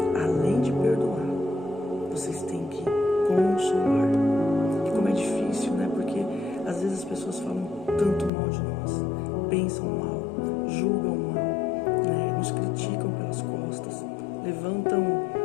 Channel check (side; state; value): right; drops out; at 8.3 s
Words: além de perdoar, vocês têm que consolar. E como é difícil, né? Porque às vezes as pessoas falam tanto mal de nós, pensam mal, julgam mal, né? Nos criticam pelas costas, levantam